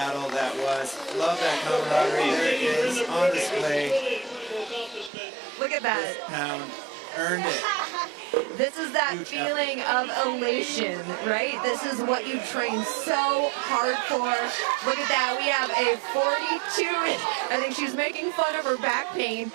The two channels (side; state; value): left; drops out; at 5.1 s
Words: that was. Love that camaraderie. There it is on display. Look at that. This pound earned it. This is that feeling of elation, right? This is what you train so hard for. Look at that. We have a 42, I think she's making fun of her back pain,